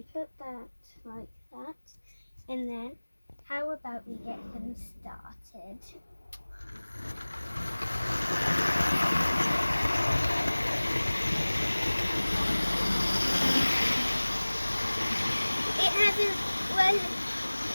put that like that, and then how about we get them started?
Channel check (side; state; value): both; inverted; correlation -1.00